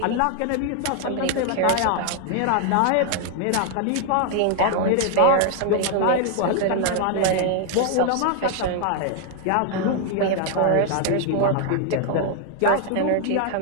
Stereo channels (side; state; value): both; different; correlation 0.00